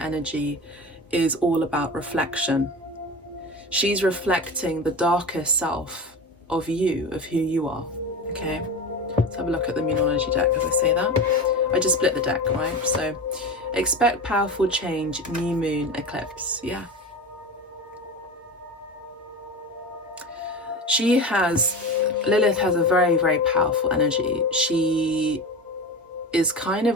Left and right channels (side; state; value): both; normal; correlation 0.27